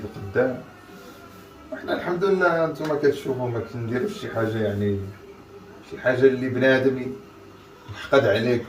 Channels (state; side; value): identical; both; correlation 1.00